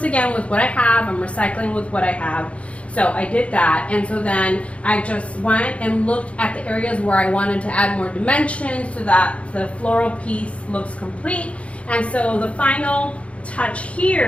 again with what I have. I'm recycling with what I have. So I did that, and so then I just went and looked at the areas where I wanted to add more dimension so that the floral piece looks complete. And so the final touch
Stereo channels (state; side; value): late; right; 0.062 ms